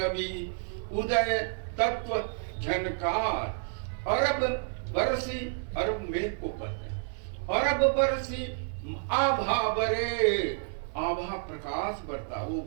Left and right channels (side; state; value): left; silent; digital silence